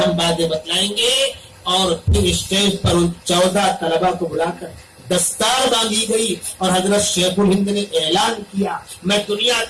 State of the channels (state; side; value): identical; both; correlation 1.00